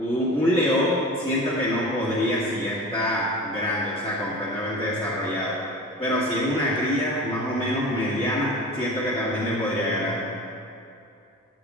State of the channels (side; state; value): both; normal; correlation 0.35